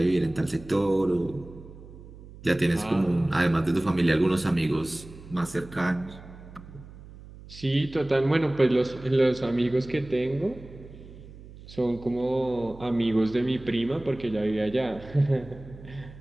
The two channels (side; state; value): right; noise; hum, 18 dB below the sound